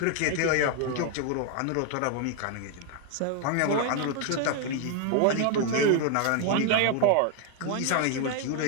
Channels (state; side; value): different; both; correlation 0.01